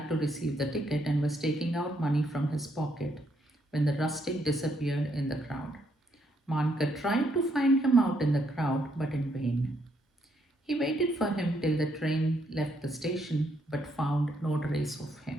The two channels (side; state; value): both; normal; correlation 0.74